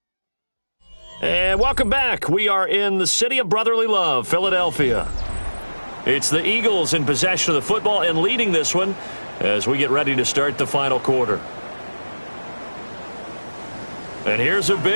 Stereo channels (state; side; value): inverted; both; correlation -1.00